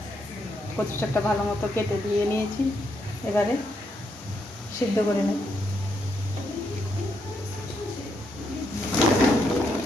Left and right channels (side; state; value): both; normal; correlation 0.78